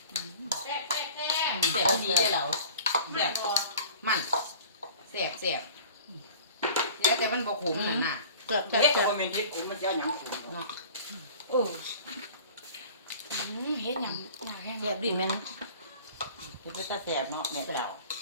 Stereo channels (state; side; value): inverted; both; correlation -0.44